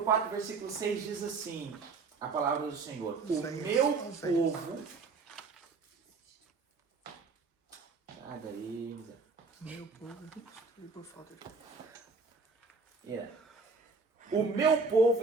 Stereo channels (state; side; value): quieter; left; 4.3 dB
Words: 4, versículo 6 diz assim, a palavra do Senhor: O Oséias, meu Oséias. povo... Sai daí, Zé. Meu povo, por falta de... O meu